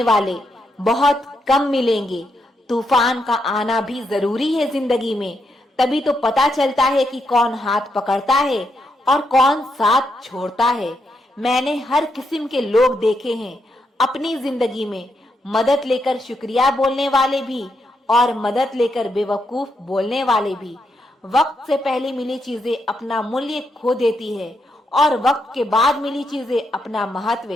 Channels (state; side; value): normal; both; correlation 0.81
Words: वाले बहुत कम मिलेंगे। तूफान का आना भी जरूरी है जिंदगी में, तभी तो पता चलता है कि कौन हाथ पकड़ता है और कौन साथ छोड़ता है। मैंने हर किस्म के लोग देखे हैं अपनी जिंदगी में, मदद लेकर शुक्रिया बोलने वाले भी और मदद लेकर बेवकूफ बोलने वाले भी। वक्त से पहले मिली चीजें अपना मूल्य खो देती है और वक्त के बाद मिली चीजें अपना